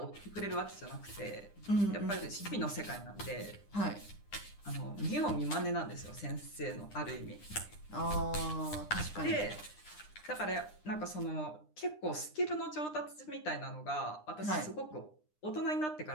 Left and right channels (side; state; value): right; late; 9.9 ms